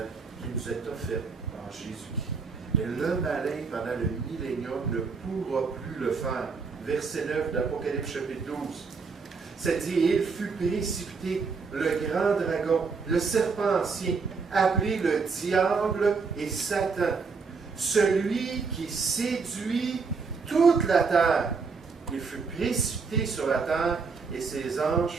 qui nous est offerte en Jésus-Christ. Mais le malin, pendant le millénium, ne pourra plus le faire. Verset 9 d'Apocalypse chapitre 12. Ça dit, il fut précipité, le grand dragon, le serpent ancien, appelé le diable et Satan, celui qui séduit toute la terre. Il fut précipité sur la terre et ses anges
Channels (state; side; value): quieter; left; 4.9 dB